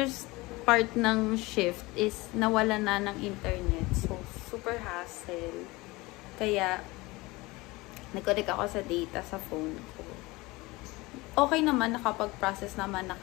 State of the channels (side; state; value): right; quieter; 22.1 dB